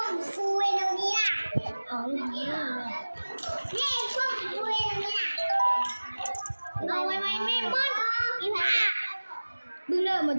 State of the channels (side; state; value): both; inverted; correlation -1.00